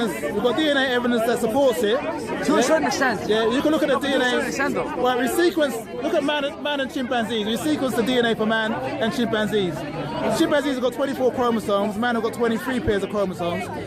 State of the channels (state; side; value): identical; both; correlation 1.00